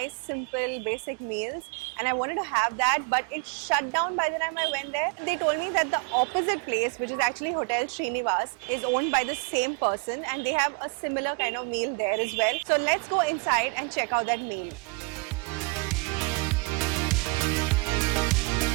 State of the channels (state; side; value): quieter; left; 29.2 dB